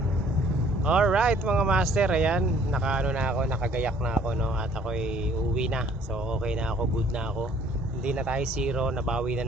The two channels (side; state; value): both; normal; correlation 0.57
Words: Alright mga master, ayan, nakaano na ako, nakagayak na ako, no? At ako'y uuwi na. So okay na ako, good na ako. Hindi na tayo zero, nabawi na